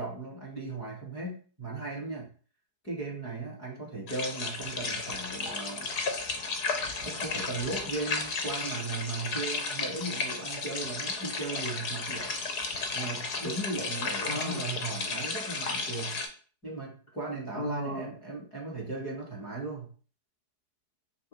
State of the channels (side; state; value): right; late; 4.7 ms